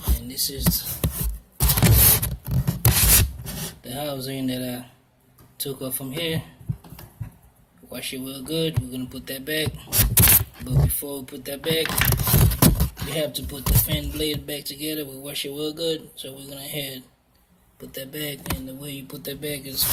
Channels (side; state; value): both; identical; correlation 1.00